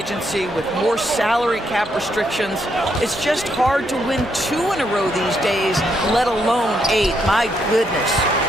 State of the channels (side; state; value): both; normal; correlation 0.76